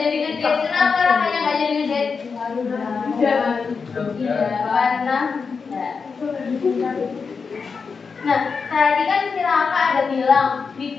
ngedate? Kenapa rasanya nggak jadi ngedate? Iya, karena nah, tadi kan si Raka ada bilang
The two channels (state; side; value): quieter; right; 5.3 dB